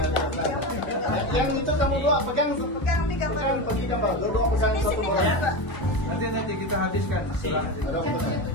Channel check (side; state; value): right; late; 1.0 ms